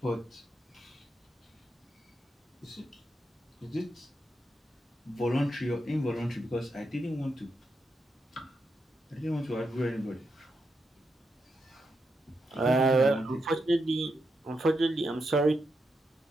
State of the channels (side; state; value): both; normal; correlation 0.84